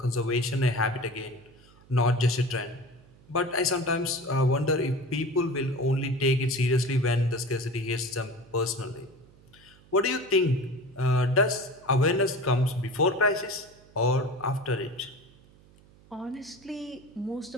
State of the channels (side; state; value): right; noise; hum, 26 dB below the sound